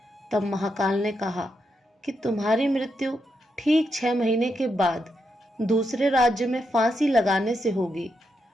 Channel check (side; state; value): both; normal; correlation 0.83